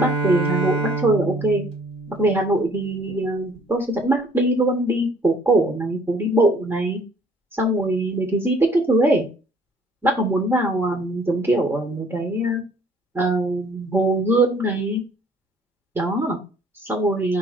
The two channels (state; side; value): normal; both; correlation 0.58